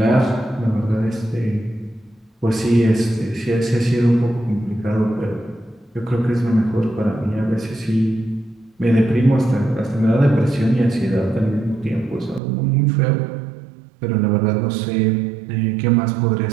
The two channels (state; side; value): drops out; left; at 12.4 s